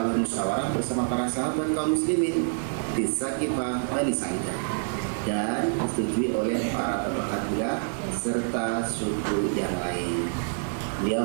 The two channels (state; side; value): silent; left; 60 dB below the other